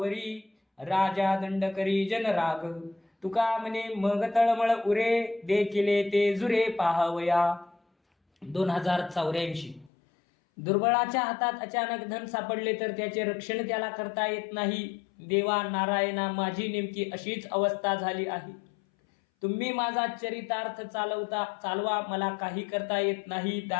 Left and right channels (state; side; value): drops out; right; at 9.9 s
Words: राजा दंड करी जनराग. तुका म्हणे मग तळमळ उरे, देखिले ते जुरे पाहावया. 2084. दुर्बळाच्या हातात अचानक धन सापडले तर त्याचे रक्षण त्याला करता येत नाही. देवा नारायणा, माझी नेमकी अशीच अवस्था झाली आहे. तुम्ही माझा चरितार्थ चालवा, मला काही करता येत नाही.